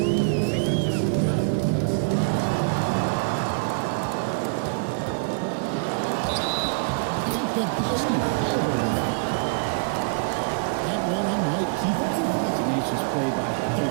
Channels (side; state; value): left; quieter; 36.6 dB